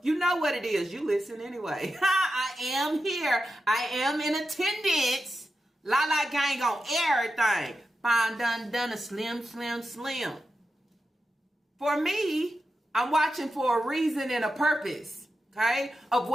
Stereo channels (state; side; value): normal; both; correlation 0.89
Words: You know what it is. You listen anyway. I am here. I am in attendance. Lala gang on everything. Fine, done, a slim. For me, I'm watching for a reason and a purpose. Okay? Of